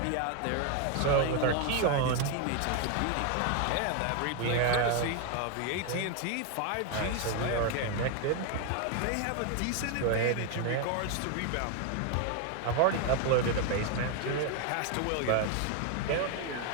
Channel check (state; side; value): different; both; correlation 0.01